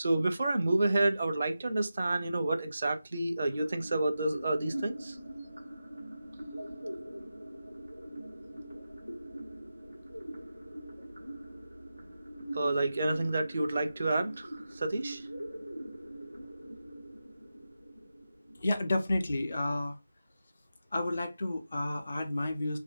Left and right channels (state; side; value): inverted; both; correlation -0.91